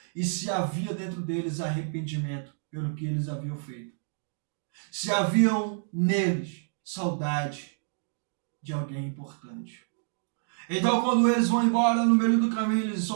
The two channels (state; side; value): silent; left; digital silence